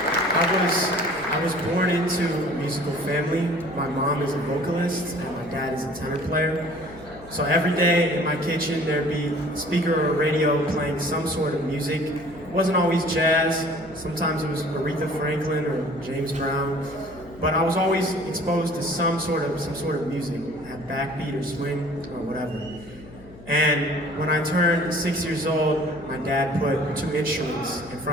I was born into a musical family. My mom is a vocalist, and my dad is a tenor player. So every day in my kitchen, there'd be a speaker or a radio playing some sort of music. It wasn't always jazz. Sometimes it was Aretha Franklin or James Brown. But I was always exposed to some sort of music, have backbeat or swing or whatever. And when I turned 6 years old, my dad put 2 instruments in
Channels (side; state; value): left; noise; hum, 19 dB below the sound